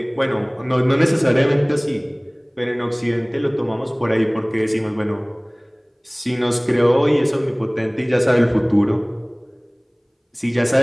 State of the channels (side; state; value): both; identical; correlation 1.00